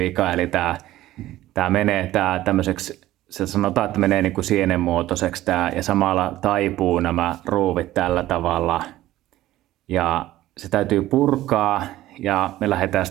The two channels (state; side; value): quieter; left; 15.2 dB